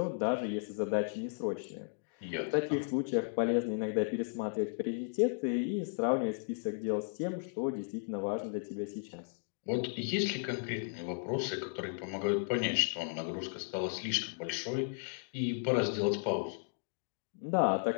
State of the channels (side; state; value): right; silent; digital silence